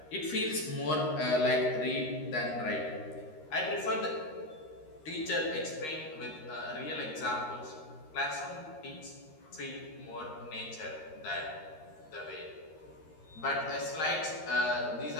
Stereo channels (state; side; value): late; right; 13 ms